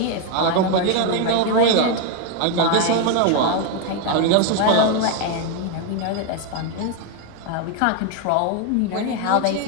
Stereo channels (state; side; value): different; both; correlation 0.01